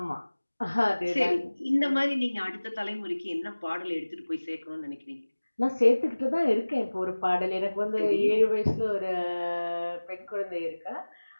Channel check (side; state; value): both; inverted; correlation -1.00